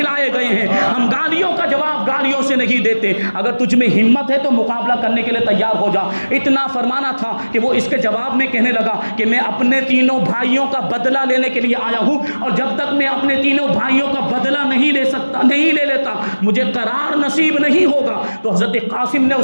گئے ہیں، ہم گالیوں کا جواب گالیوں سے نہیں دیتے۔ اگر تجھ میں ہمت ہے تو مقابلہ کرنے کے لیے تیار ہو جا۔ اتنا فرمانا تھا کہ وہ اس کے جواب میں کہنے لگا کہ میں اپنے تینوں بھائیوں کا بدلہ لینے کے لیے آیا ہوں، اور جب تک میں اپنے تینوں بھائیوں کا بدلہ نہیں لے لیتا مجھے قرار نصیب نہیں ہوگا۔ تو حضرت قاسم نے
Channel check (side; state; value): both; inverted; correlation -1.00